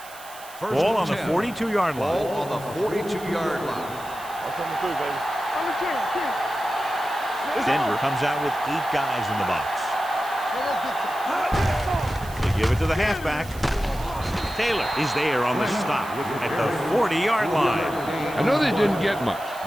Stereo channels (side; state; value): right; noise; hiss, 18 dB below the sound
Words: Ball on the 42-yard line. Ball on the 42-yard line. I'm coming through, baby. I'm the king. Denver comes out with 8 guys in the box. They give it to the halfback. Taylor is there on the stop at the 40-yard line. I know they didn't get much,